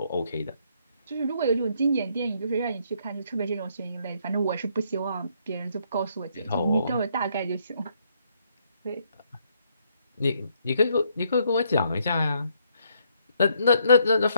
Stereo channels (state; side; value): inverted; both; correlation -0.71